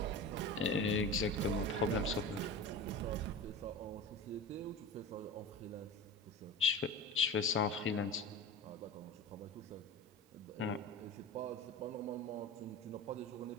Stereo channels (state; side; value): normal; both; correlation 0.30